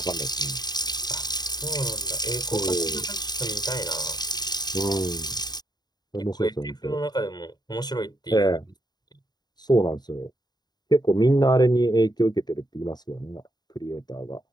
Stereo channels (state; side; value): late; right; 0.20 ms